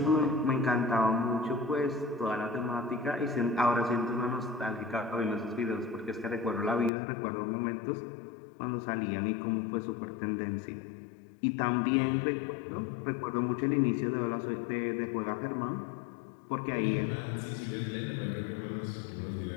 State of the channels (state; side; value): drops out; right; at 6.9 s